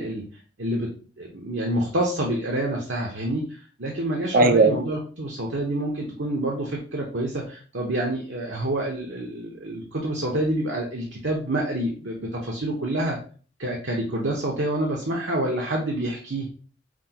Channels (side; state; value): both; normal; correlation 0.27